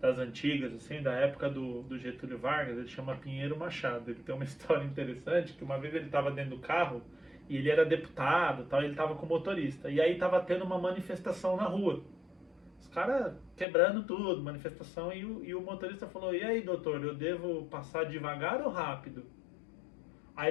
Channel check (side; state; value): right; drops out; at 13.7 s